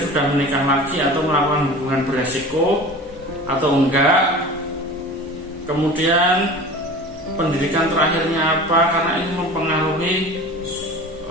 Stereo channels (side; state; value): both; normal; correlation 0.38